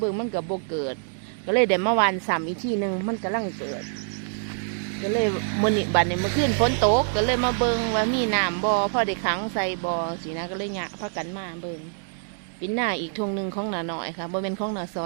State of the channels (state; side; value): silent; left; digital silence